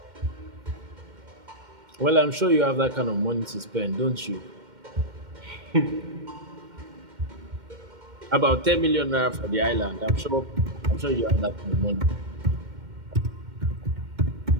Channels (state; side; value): late; left; 2.1 ms